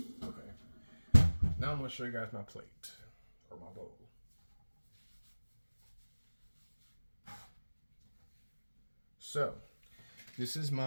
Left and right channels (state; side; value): inverted; both; correlation -1.00